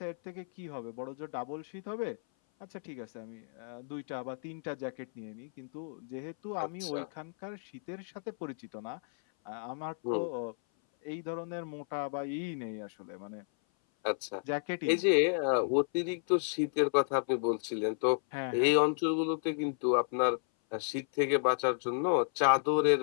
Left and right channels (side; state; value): right; silent; 56 dB below the other